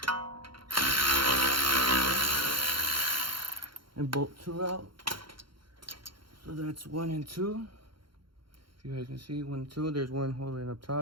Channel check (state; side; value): late; left; 0.73 ms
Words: And bolt two out. So that's 1 and 2. If you guys can see, 1 and 2. There's one holding up